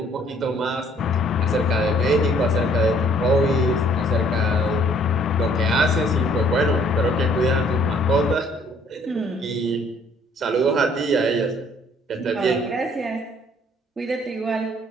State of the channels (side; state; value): both; normal; correlation 0.61